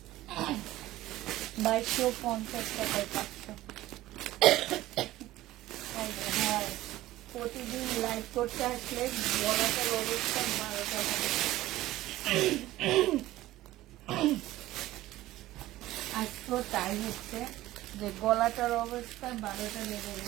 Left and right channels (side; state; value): left; quieter; 16.1 dB